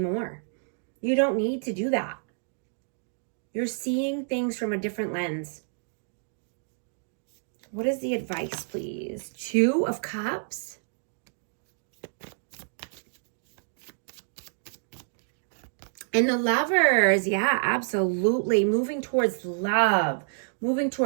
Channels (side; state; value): left; silent; digital silence